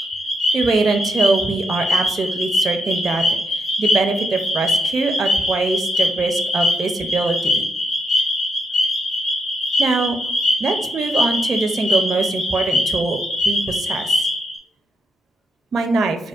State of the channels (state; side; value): normal; both; correlation 0.80